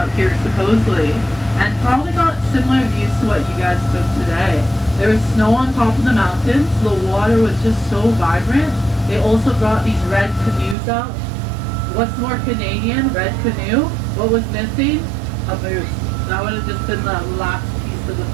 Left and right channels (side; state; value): left; drops out; at 10.8 s